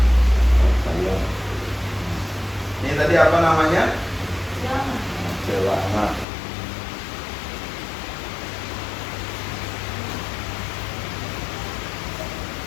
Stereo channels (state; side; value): drops out; right; at 6.2 s